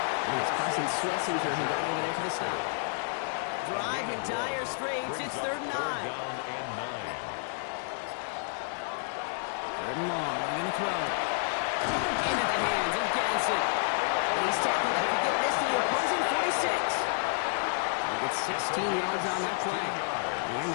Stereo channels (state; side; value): silent; right; digital silence